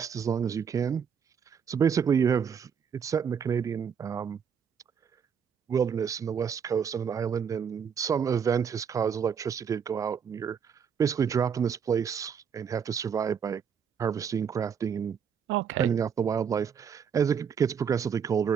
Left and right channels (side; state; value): left; quieter; 7.2 dB